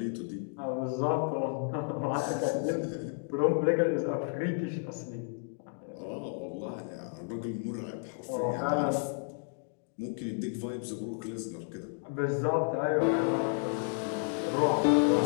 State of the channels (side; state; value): right; silent; 56 dB below the other